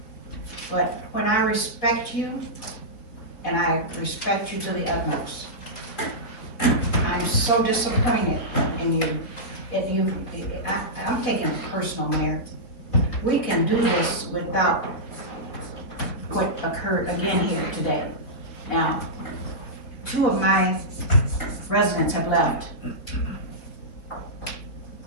But when I respect you, and I respect you to the utmost, I'm so disappointed in you. I'm taking it personal, Mayor. We can do this without what occurred again here today. Now, 2 of my residents have left.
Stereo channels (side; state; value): right; late; 4.4 ms